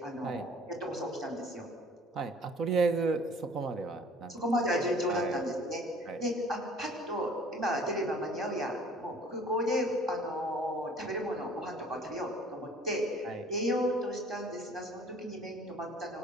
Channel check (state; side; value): normal; both; correlation 0.52